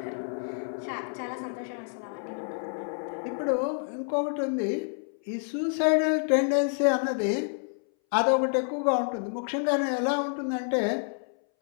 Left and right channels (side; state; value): right; silent; 59 dB below the other